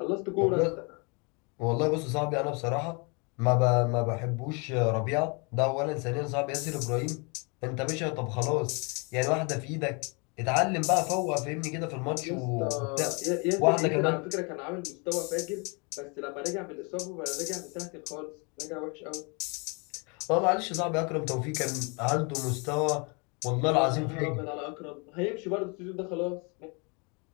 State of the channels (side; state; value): right; quieter; 32.4 dB